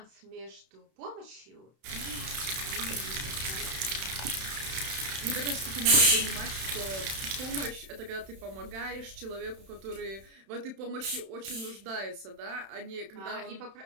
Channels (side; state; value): left; late; 31 ms